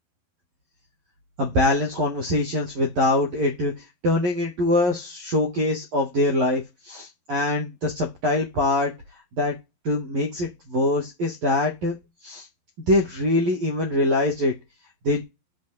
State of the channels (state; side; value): late; left; 11 ms